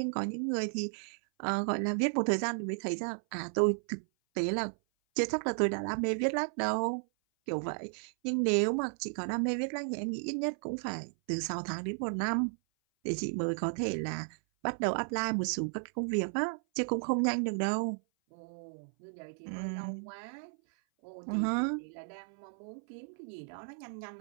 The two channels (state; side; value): silent; left; 55 dB below the other